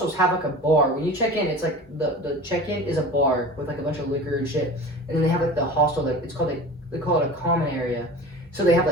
have like a bar. When you check in, it's like the check in is a bar with like a bunch of liquor and shit, and then they have like the hostel, like it's called they call it a common area. So they have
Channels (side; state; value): both; normal; correlation 0.36